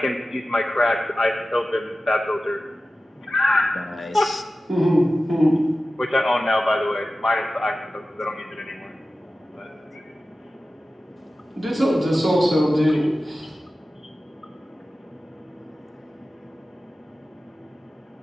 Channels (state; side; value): normal; both; correlation 0.95